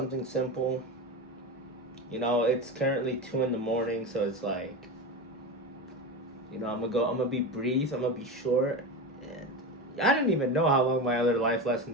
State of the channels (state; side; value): normal; both; correlation 0.22